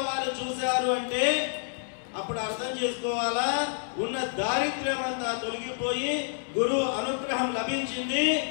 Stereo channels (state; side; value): silent; right; digital silence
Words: వారు చూశారు అంటే అప్పుడు అర్థం చేసుకోవాలా, ఉన్న దారిద్ర్యం అంతా తొలగిపోయి గురువు అనుగ్రహం లభించింది.